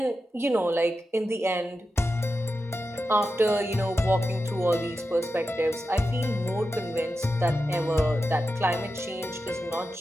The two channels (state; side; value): normal; both; correlation 0.90